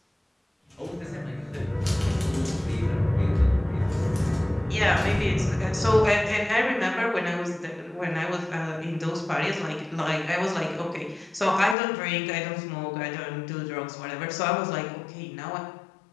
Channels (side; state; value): right; drops out; at 11.8 s